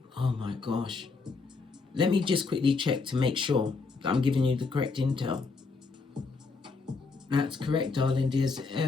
my gosh. Let me just quickly check to make sure that I'm giving you the correct intel. That's correct, darling dears.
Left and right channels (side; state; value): right; quieter; 4.3 dB